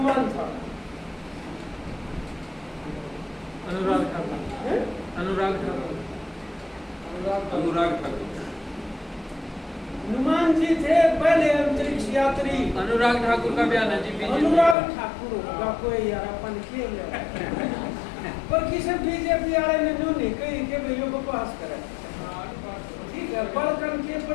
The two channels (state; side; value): drops out; right; at 14.8 s